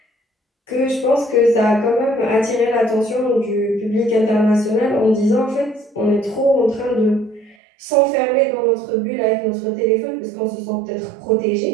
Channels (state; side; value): drops out; left; at 7.6 s